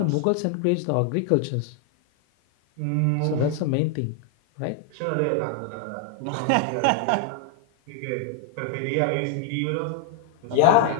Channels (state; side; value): different; both; correlation 0.00